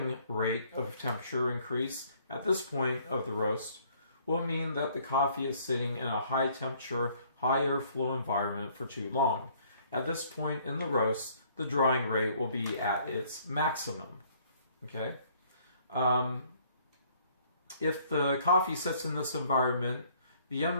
rate of temperature increase at this point of the roast will mean that the coffee is sitting in a high temperature, high airflow environment for too long. At this point in the roast, the drying rate will be at its maximum. Okay? If the coffee sits in this environment, the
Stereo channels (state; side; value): inverted; both; correlation -0.61